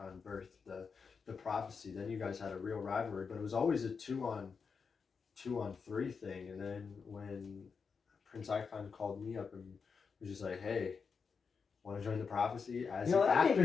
birthed the Prophecy. Then you guys had a real rivalry, but it was always a 2-on-3 thing. And then when Prince Icon called me up and was just like, "Hey, want to join the Prophecy?" That made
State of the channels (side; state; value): right; quieter; 5.5 dB